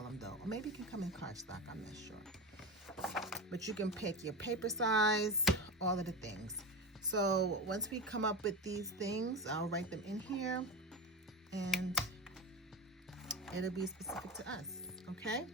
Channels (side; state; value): both; normal; correlation 0.23